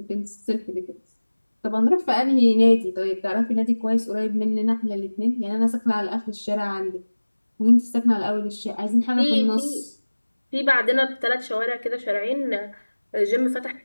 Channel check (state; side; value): inverted; both; correlation -1.00